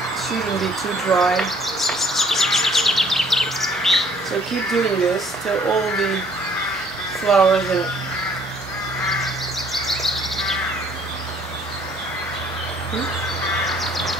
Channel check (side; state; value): both; normal; correlation 0.60